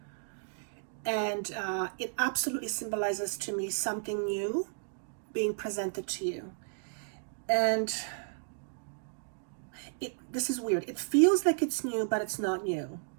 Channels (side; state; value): left; silent; digital silence